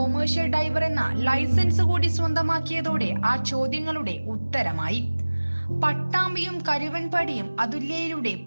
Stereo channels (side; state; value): both; inverted; correlation -1.00